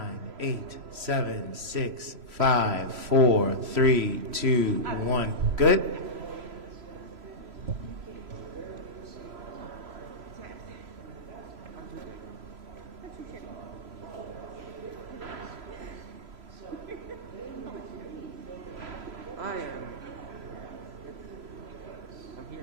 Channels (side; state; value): left; late; 3.0 ms